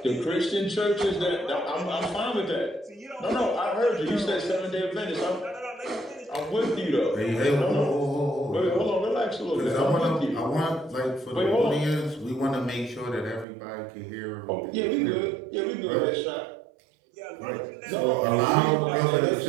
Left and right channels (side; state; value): left; drops out; at 13.5 s